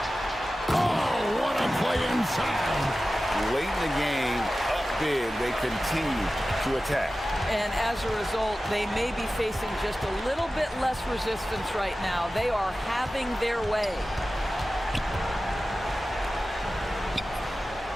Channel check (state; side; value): normal; both; correlation 0.95